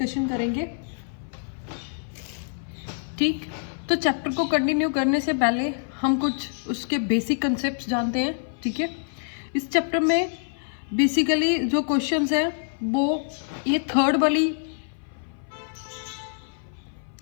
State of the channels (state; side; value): silent; right; 56 dB below the other